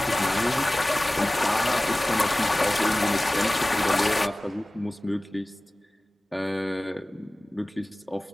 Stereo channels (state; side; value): normal; both; correlation 0.98